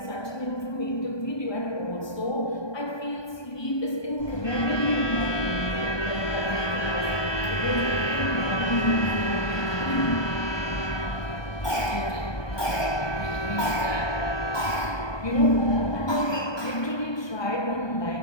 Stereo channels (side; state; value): right; late; 1.2 ms